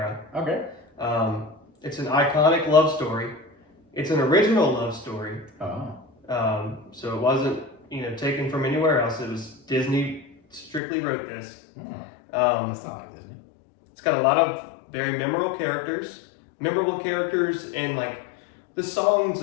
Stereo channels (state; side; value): drops out; right; at 10.8 s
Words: Okay. It's an iconic love story. It's an original love story. Oh. So it wasn't, taken from anywhere else. It was Disney strictly wrote this. That's not like Disney. It's got a lot of very memorable characters, and like the songs